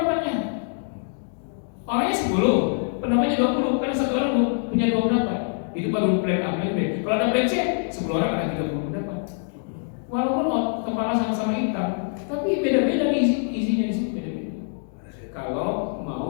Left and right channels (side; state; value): right; silent; 62 dB below the other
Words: Orangnya 10, pendapatnya 20, karena satu orang punya 2 pendapat. Itu baru plan A, plan B. Kalau ada plan C, 10 orang ada 30 pendapat. Walaupun kepala sama-sama hitam, tapi beda-beda isinya di sini beda-beda. Kalau